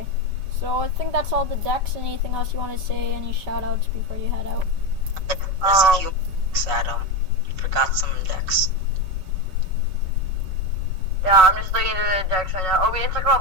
so I think that's all the decks. Anything else you want to say? Any shout outs before you head out? There's a few decks, Adam. You forgot some decks. Yeah, I'm just looking into the decks right now. Oh, we didn't talk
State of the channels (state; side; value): late; left; 5.3 ms